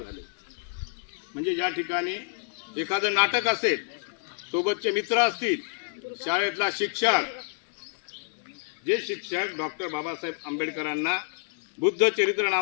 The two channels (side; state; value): right; silent; digital silence